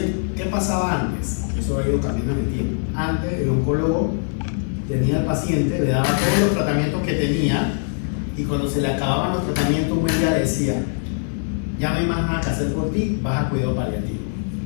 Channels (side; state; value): right; silent; digital silence